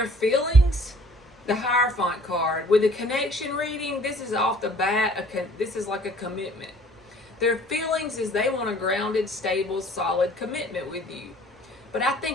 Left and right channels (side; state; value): both; normal; correlation 0.54